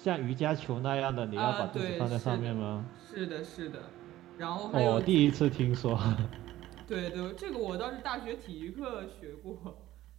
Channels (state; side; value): quieter; left; 14.8 dB